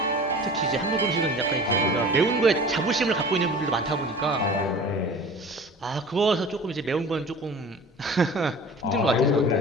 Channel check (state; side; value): normal; both; correlation 0.40